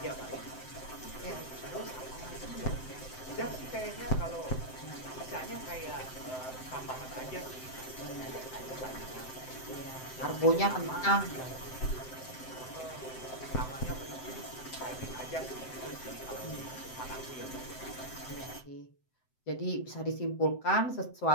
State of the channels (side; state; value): right; late; 7.8 ms